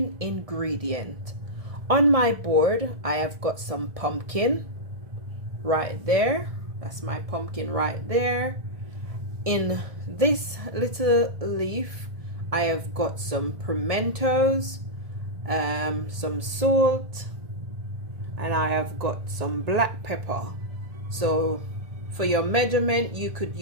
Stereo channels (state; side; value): late; left; 1.7 ms